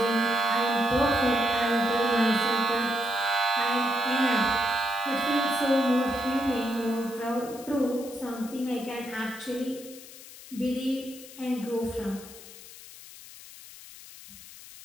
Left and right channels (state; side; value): noise; left; hiss, 17 dB below the sound